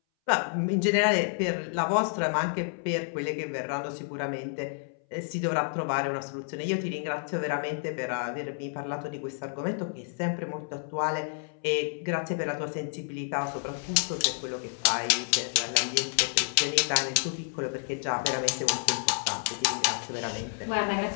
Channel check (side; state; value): right; silent; 58 dB below the other